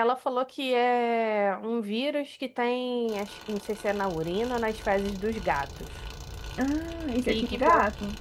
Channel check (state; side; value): identical; both; correlation 1.00